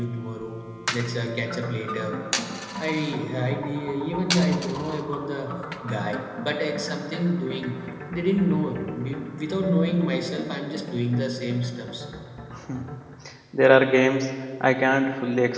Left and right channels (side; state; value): both; identical; correlation 1.00